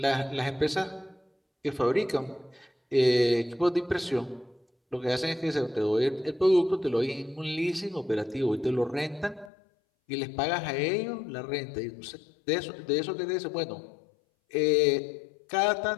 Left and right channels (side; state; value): right; drops out; at 9.5 s